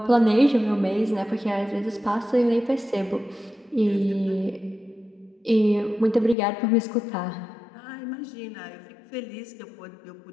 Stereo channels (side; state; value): right; drops out; at 6.4 s